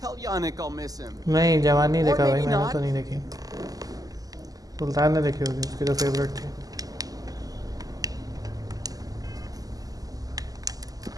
Tell Yannick I'll miss him. नहीं जवान नहीं Or देखा भाई maybe मैंने not. तो नहीं देखी सुल्तान ने देखी होगी उसकी तो फेवरेट थी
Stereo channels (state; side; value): late; left; 0.17 ms